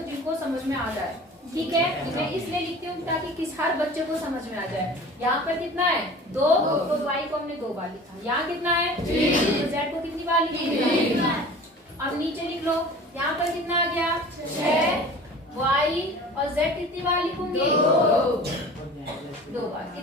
जिनको समझ में आ जाए, ठीक है। मैं इसलिए लिखती हूँ ताकि किस हर बच्चे को समझ में आ जाए। यहाँ पर कितना है 2, तो y को हमने 2 बार लिखा। यहाँ कितना है 3, तो z को कितनी बार लिखा। अब नीचे लिख लो, यहाँ पर कितना आ गया 6, y और z कितनी बार लिखूंगी 2 बार।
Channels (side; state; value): both; normal; correlation 0.41